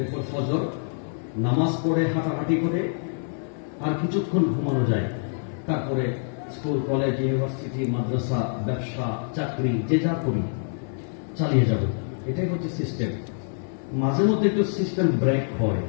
ফজর নামাজ পড়ে হাঁটাহাঁটি করে আর কিছুক্ষণ ঘুমানো যায়, তারপরে স্কুল, কলেজ, ইউনিভার্সিটি, মাদ্রাসা, ব্যবসা, চাকরি, যে যা করি চালিয়ে যাব। এটাই হচ্ছে সিস্টেম। মাঝে মধ্যে একটু সিস্টেম ব্রেক হয়,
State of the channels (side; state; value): right; silent; 61 dB below the other